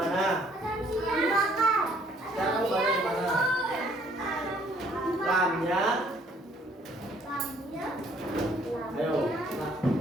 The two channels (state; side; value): normal; both; correlation 0.63